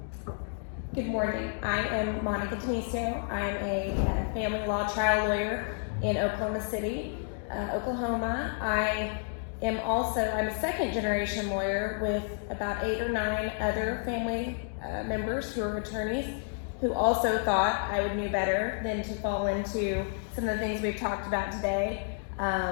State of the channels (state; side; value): silent; right; 58 dB below the other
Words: Good morning. I am Monica Denisio. I'm a family law trial lawyer in Oklahoma City, Oklahoma. I'm a second generation lawyer with about 8 or 9 other family members who are attorneys who also thought I would know better than to fall into some of the things we've talked about today.